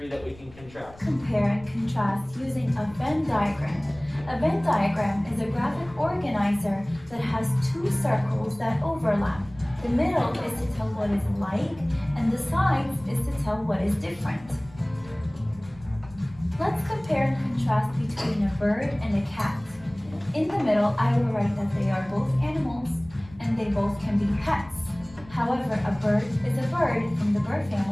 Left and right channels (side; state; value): left; noise; rumble, 22 dB below the sound